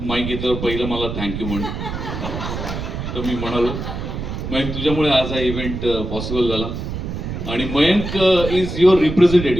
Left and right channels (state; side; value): noise; right; rumble, 6 dB below the sound